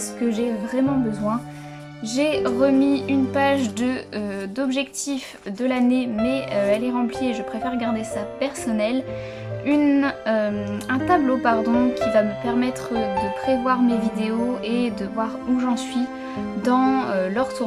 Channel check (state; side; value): identical; both; correlation 1.00